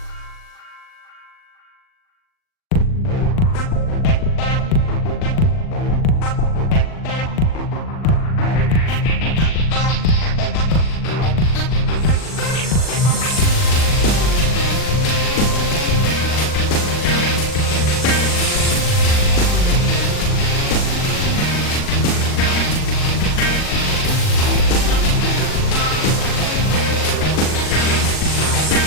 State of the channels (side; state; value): right; late; 39 ms